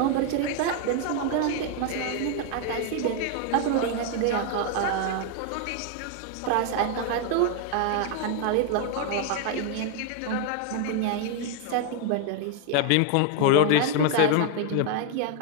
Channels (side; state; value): both; different; correlation 0.00